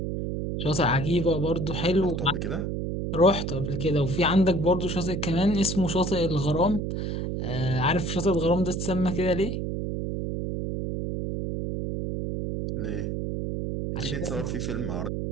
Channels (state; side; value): noise; right; hum, 2 dB below the sound